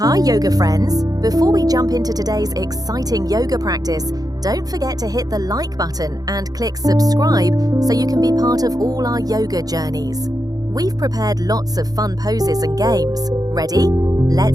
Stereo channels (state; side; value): late; left; 0.18 ms